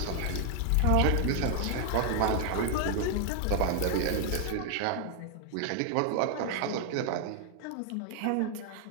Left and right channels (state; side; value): different; both; correlation 0.00